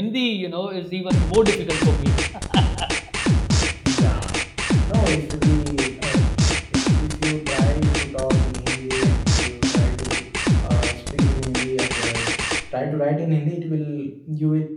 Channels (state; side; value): identical; both; correlation 1.00